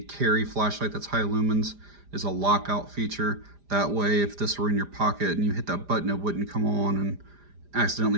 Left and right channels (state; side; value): late; left; 4.9 ms